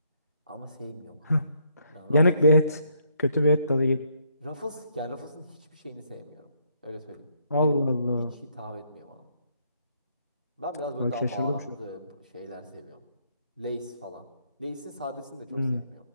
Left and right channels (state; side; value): inverted; both; correlation -0.71